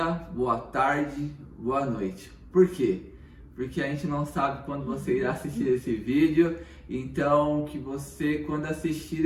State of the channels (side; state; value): both; identical; correlation 1.00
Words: boa tarde, boa noite. Por quê? Porque a gente não sabe quando você irá assistir esse vídeo. Então, que você, quando assistir